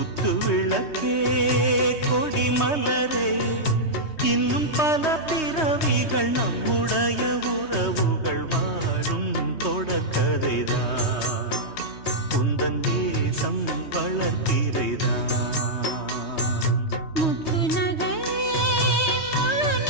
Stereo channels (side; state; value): right; late; 3.2 ms